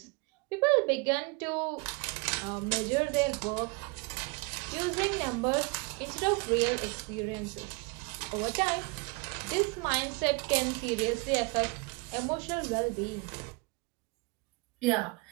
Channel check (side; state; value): left; quieter; 29.3 dB